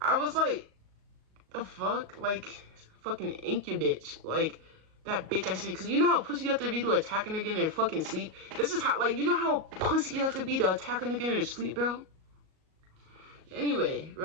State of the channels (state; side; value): late; left; 38 ms